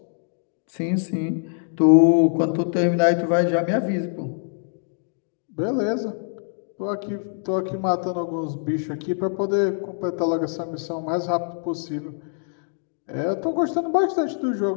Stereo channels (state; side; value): silent; right; 62 dB below the other